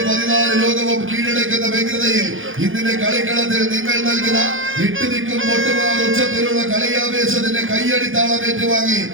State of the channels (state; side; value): late; left; 0.58 ms